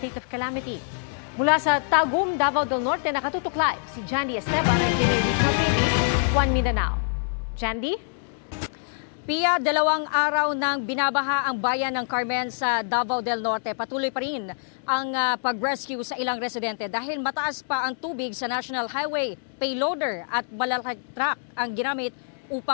of calamity. Mula sa Tagum, Davao del Norte, nakatutok live si Jandy Esteban ng GMA Regional TV, One Mindanao. Jandy? Pia, 2 araw nang binabaha ang bayan ng Carmen sa Davao del Norte. Patuloy pa rin ang pag-rescue sa ilang residente dahil mataas pa ang tubig sa National Highway. Payloader at malalaking truck ang ginamit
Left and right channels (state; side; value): silent; right; digital silence